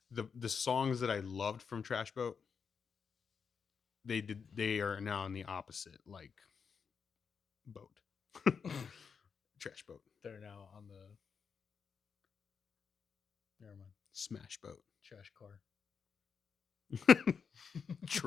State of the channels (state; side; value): quieter; right; 6.1 dB